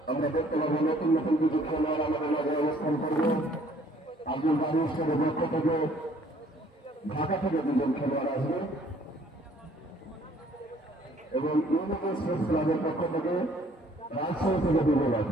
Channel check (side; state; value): both; normal; correlation 0.59